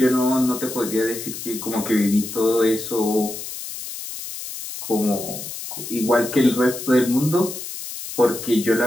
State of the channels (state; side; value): noise; left; hiss, 9 dB below the sound